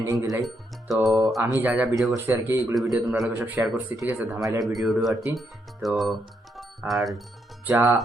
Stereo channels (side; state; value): both; normal; correlation 0.78